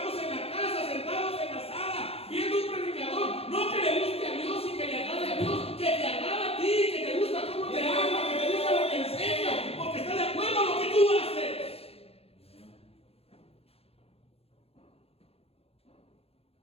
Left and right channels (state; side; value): late; right; 0.29 ms